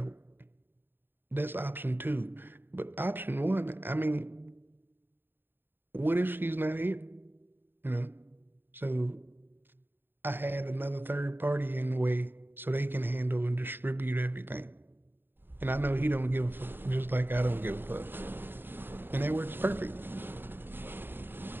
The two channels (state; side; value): late; left; 0.097 ms